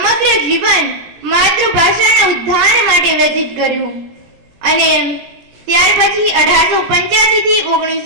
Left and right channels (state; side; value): late; left; 17 ms